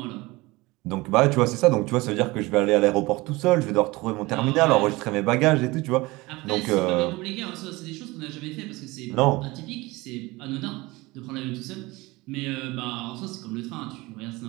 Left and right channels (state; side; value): quieter; left; 21.9 dB